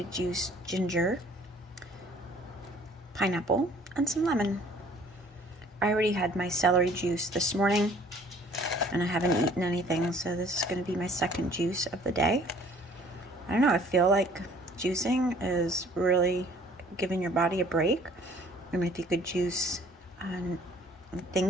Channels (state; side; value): normal; both; correlation 0.55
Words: juice ginger, pineapple, and some lemon. I already had my celery juice this morning and I haven't eaten anything, so this is going to be my second juice of the day. I don't know, I feel like juicing is really giving your body a break, and if you could juice